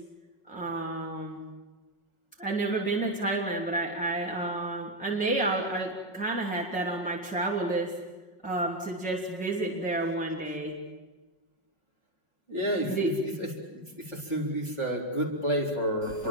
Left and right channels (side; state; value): right; late; 5.5 ms